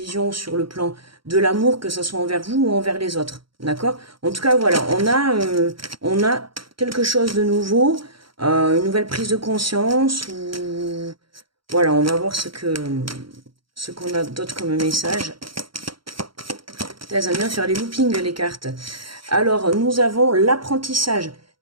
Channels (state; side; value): late; left; 0.73 ms